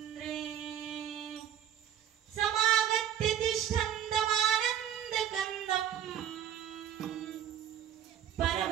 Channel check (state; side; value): quieter; left; 10.0 dB